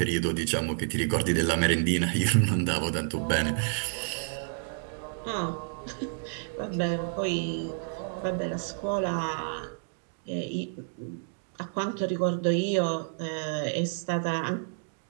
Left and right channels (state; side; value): silent; left; digital silence